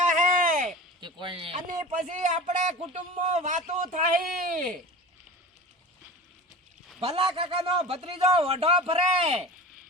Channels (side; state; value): both; normal; correlation 0.34